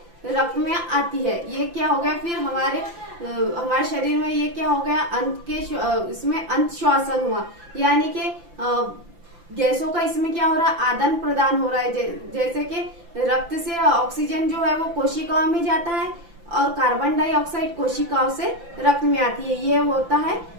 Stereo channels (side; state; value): left; late; 5.9 ms